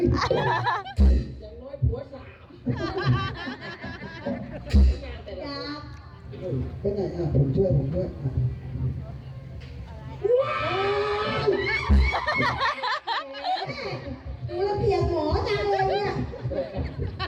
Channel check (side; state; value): both; identical; correlation 1.00